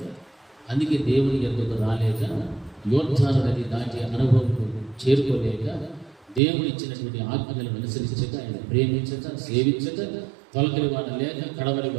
అందుకే దేవుని ఎందుకు రాలేక, యోద్ధాలు నది దాటి అనుభవం చేరుకోలేక, దేవుడు ఇచ్చినటువంటి ఆజ్ఞలను అనుసరించక, ఆయన ప్రేమించక, సేవించక, తొలకరి వాడ లేక, కడవరి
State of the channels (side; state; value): left; drops out; at 6.4 s